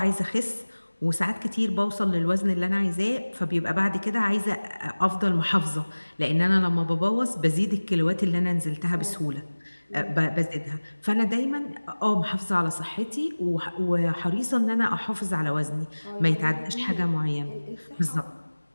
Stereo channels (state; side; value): inverted; both; correlation -1.00